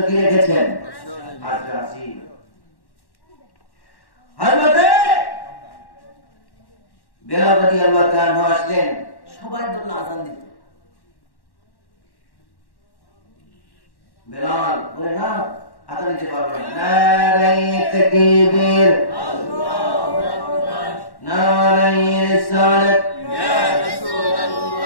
কি রেখেছেন? আজকে আসিন। হযরতে বেলাল রাদিয়াল্লাহু তাআলা আসলেন, সবাই বলল আযান দিতে। বেলাল বলে না, আযান দিতে পারবে না। নারায়ে তাকবীর, আল্লাহু আকবার, নারায়ে রিসালাত, ইয়া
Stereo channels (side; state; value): right; late; 1.1 ms